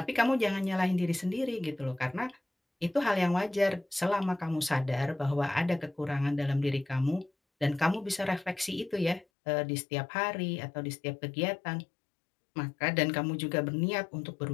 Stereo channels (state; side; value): drops out; right; at 9.2 s